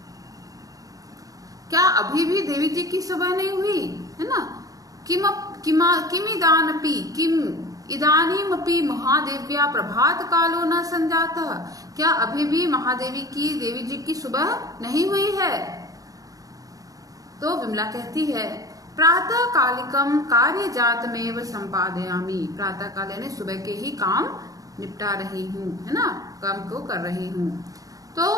क्या अभी भी देवी जी की सुबह नहीं हुई, है ना। किम इदानीमपि महादेव्या प्रभात कालो न संजातः, क्या अभी भी महादेवी की, देवी जी की सुबह नहीं हुई है। तो विमला कहती है प्रातः कालिकम कार्य जातमेव संपादयामि, प्रातः काल यानी सुबह के ही काम निपटा रही हूँ, है ना, काम को कर रही हूँ। तो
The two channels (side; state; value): left; late; 0.17 ms